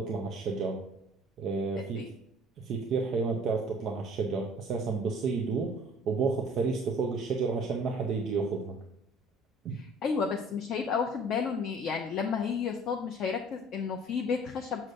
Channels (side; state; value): both; normal; correlation 0.52